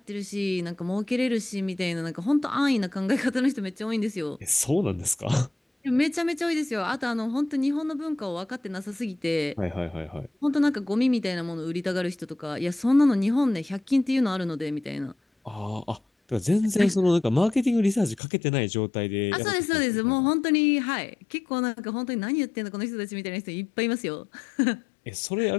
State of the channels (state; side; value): drops out; right; at 18.2 s